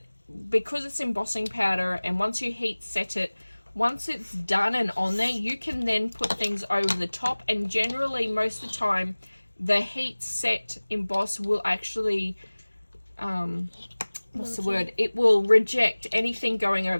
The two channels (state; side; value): inverted; both; correlation -1.00